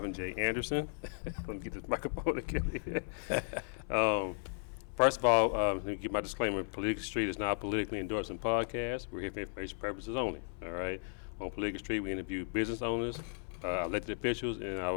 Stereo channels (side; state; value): right; silent; 54 dB below the other